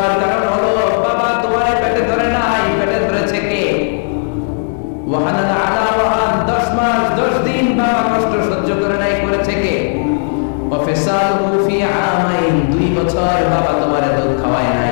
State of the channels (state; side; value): silent; right; digital silence